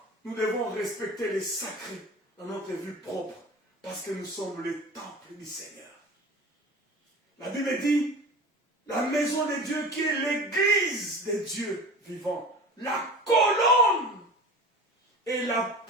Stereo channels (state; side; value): normal; both; correlation 0.36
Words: nous devons respecter les sacrés dans notre vie propre, parce que nous sommes le temple du Seigneur. La Bible dit, la maison de Dieu qui est l'église de Dieu vivant, la colonne et